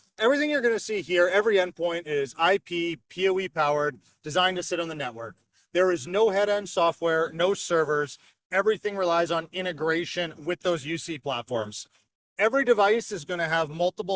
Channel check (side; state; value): both; identical; correlation 1.00